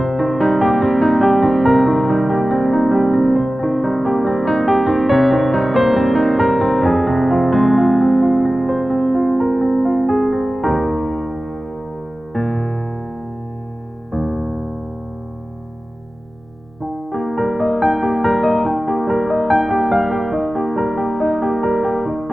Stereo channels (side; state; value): both; normal; correlation 0.96